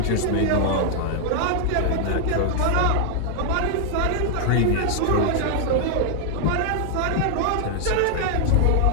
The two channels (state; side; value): different; both; correlation 0.00